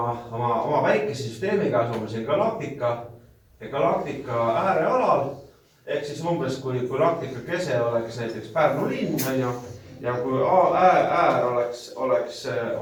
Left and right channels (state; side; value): identical; both; correlation 1.00